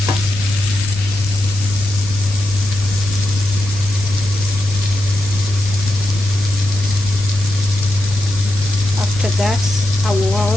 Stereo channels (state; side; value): noise; left; rumble, 11 dB below the sound